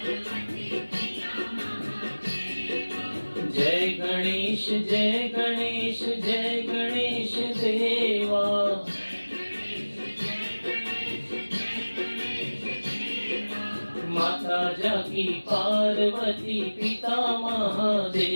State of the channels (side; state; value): both; inverted; correlation -1.00